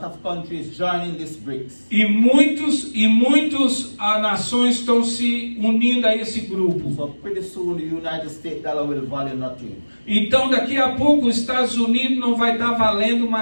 of countries joining this BRICS. e muitos nações estão se unindo a esse grupo. So pretty soon the United States dollar will value nothing. Então daqui a pouco os Estados Unidos não vai estar valendo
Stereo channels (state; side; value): inverted; both; correlation -1.00